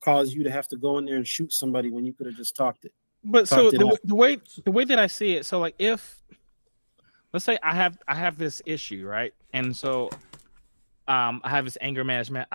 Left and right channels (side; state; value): both; inverted; correlation -1.00